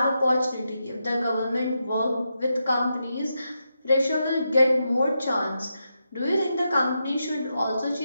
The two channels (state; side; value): inverted; both; correlation -0.85